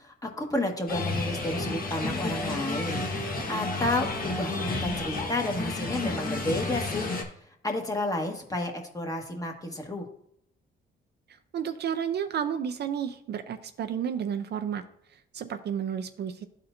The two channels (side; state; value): both; normal; correlation 0.44